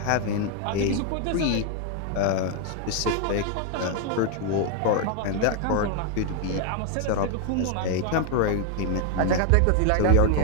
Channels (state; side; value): different; both; correlation 0.00